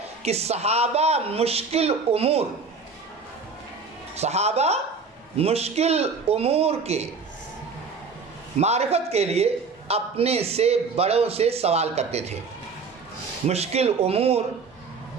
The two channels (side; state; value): left; quieter; 4.7 dB